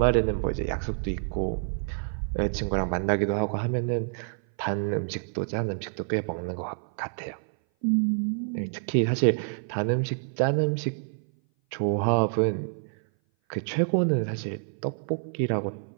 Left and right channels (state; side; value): silent; left; 57 dB below the other